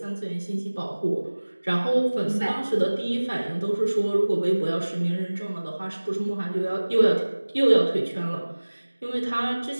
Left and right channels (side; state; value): both; inverted; correlation -1.00